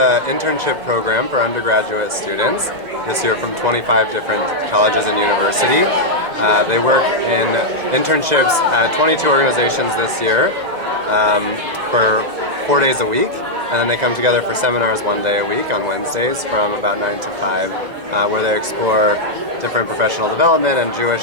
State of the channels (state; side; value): late; left; 2.0 ms